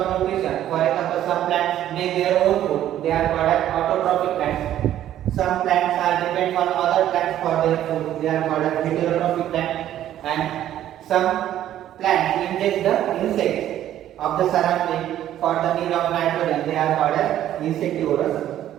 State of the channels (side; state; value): left; quieter; 12.0 dB